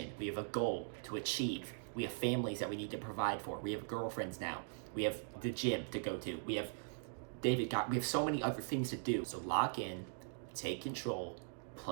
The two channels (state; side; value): silent; left; digital silence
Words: We have a goal to achieve. We have families that we need to provide for. We have girlfriends now. We have the gym to go to. We have we have so many other things to do. So lock in, take control,